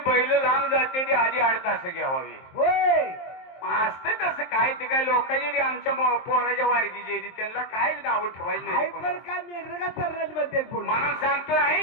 बैल लांब जाते ती आधी 8 तास घ्यावी होय असते तसं काय ते काय लोकांची ती आमच्या पोराच्या वारगीची ती त्यांना काय नाव ठेवायची नाही हायपर कोणाला. काय मेंढर का चरण्यात म्हणते पुन्हा म्हणून सांगतो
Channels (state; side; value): late; right; 23 ms